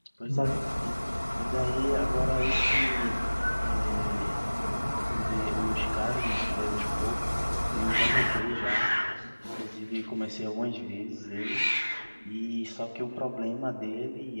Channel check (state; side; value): inverted; both; correlation -1.00